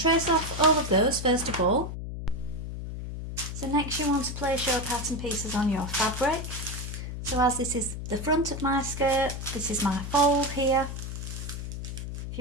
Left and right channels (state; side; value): noise; left; hum, 7 dB below the sound